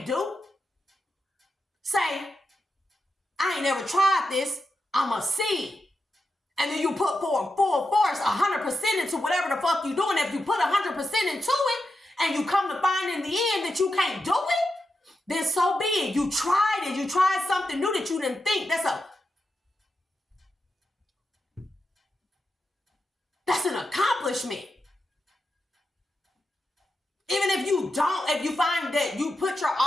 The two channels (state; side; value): normal; both; correlation 0.88